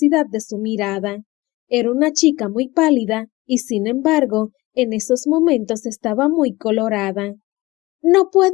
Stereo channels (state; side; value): quieter; right; 20.2 dB